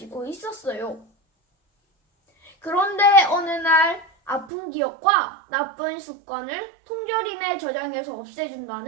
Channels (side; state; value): left; drops out; at 4.5 s